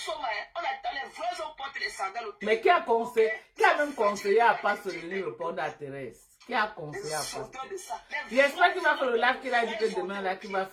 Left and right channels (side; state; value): both; identical; correlation 1.00